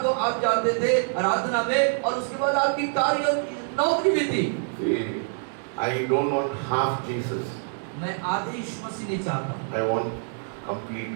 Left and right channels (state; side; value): silent; left; 61 dB below the other